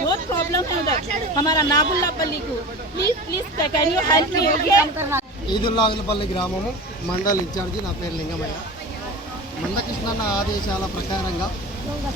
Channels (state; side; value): normal; both; correlation 0.32